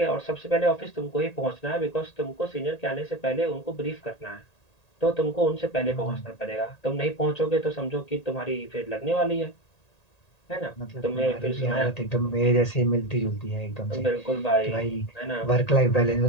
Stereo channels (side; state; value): right; late; 1.8 ms